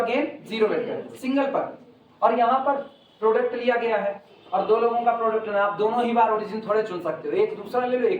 0 vector, single पर। और यहाँ पर प्रोडक्ट लिया गया है और दो लोगों का प्रोडक्ट है, आप दोनों ही बार ओरिजिन थोड़े चुन सकते हो, एक दूसरा ले लो,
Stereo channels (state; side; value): identical; both; correlation 1.00